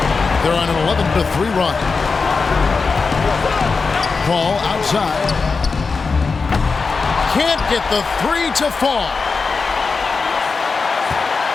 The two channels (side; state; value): right; quieter; 4.6 dB